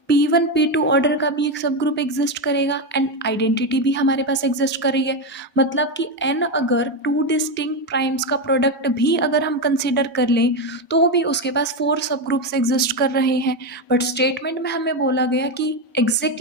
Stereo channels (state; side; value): normal; both; correlation 0.10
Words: p1 p2 ऑर्डर का भी एक सब ग्रुप एग्जिस्ट करेगा, एंड आइडेंटिटी भी हमारे पास एग्जिस्ट कर रही है। मतलब कि n अगर टू डिस्टिंक्ट प्राइम्स का प्रोडक्ट भी अगर हम कंसिडर कर लें तो भी उसके पास 4 सब ग्रुप्स एग्जिस्ट कर रहे हैं, बट स्टेटमेंट में हमें बोला गया कि